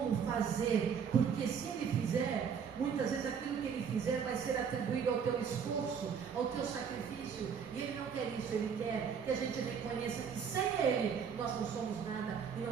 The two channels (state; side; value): quieter; left; 6.9 dB